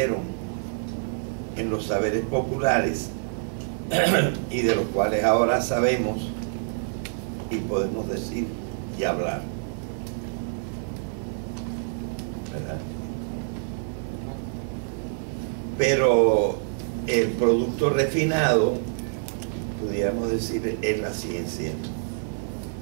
en los saberes populares y de los cuales ahora sabemos y podemos decir y hablar. ¿Verdad? Pero el producto refinado, pudiéramos decir, es la ciencia.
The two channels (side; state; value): left; silent; digital silence